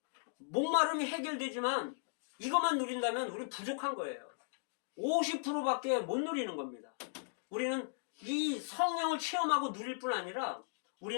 목마름이 해결되지만 이것만 누린다면 우리 부족한 거예요. 50%밖에 못 누리는 겁니다. 우리는 이 성령을 체험하고 누릴 뿐 아니라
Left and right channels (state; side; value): silent; right; digital silence